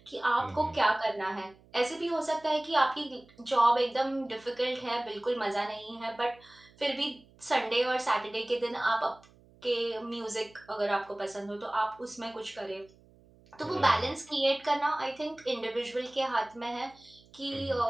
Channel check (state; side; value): noise; right; hum, 27 dB below the sound